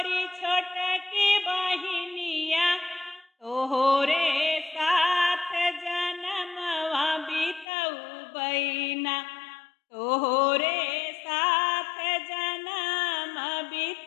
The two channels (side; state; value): right; drops out; at 7.7 s